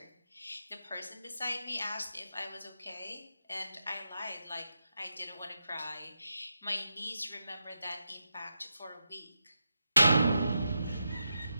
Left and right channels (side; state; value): both; inverted; correlation -0.87